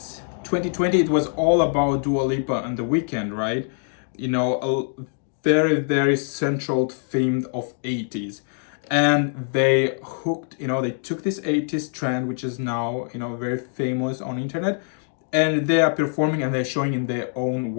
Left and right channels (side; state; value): right; silent; 63 dB below the other